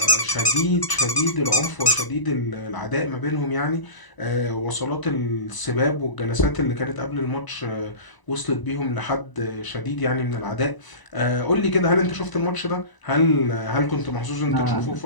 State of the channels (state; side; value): late; right; 1.0 ms